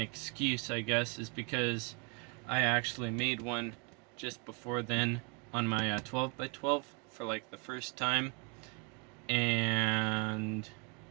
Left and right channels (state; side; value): quieter; left; 31.6 dB